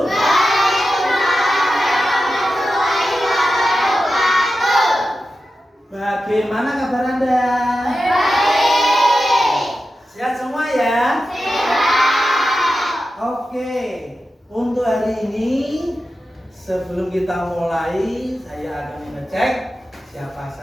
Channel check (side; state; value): both; normal; correlation 0.91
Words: Waalaikumsalam warahmatullahi wabarakatuh. Bagaimana kabar Anda? Baik. Sehat semua ya? Sehat. Oke. Untuk hari ini sebelum kita mulai, saya akan mengecek siapa